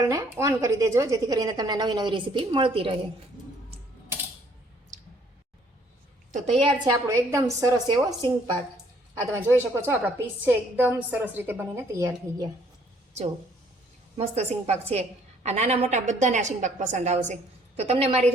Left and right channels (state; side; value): normal; both; correlation 0.63